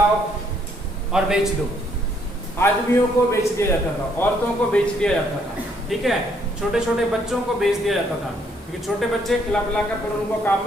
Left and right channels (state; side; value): normal; both; correlation 0.69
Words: और बेच दो। आदमियों को बेच दिया जाता था, औरतों को बेच दिया जाता था। ठीक है, छोटे छोटे बच्चों को बेच दिया जाता था, क्योंकि छोटे बच्चे खिला पिला कर फिर उनको काम